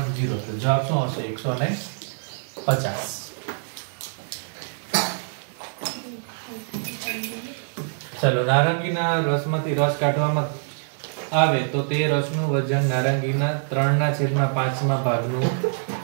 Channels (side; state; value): left; silent; digital silence